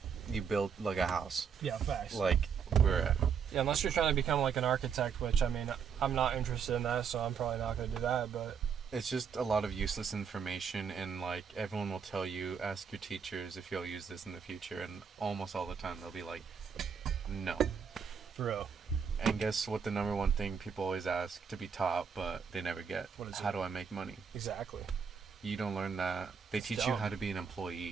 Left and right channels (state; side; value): quieter; left; 6.7 dB